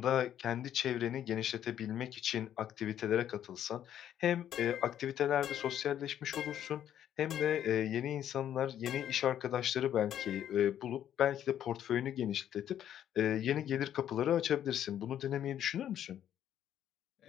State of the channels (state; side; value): quieter; right; 10.5 dB